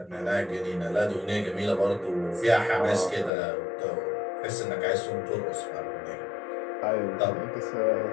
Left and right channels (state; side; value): drops out; right; at 3.3 s